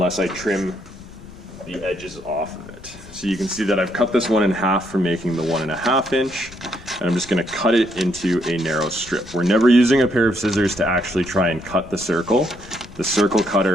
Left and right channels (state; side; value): noise; left; rumble, 20 dB below the sound